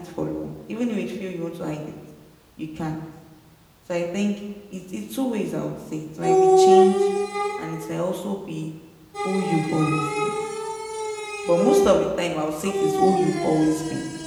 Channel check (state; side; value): identical; both; correlation 1.00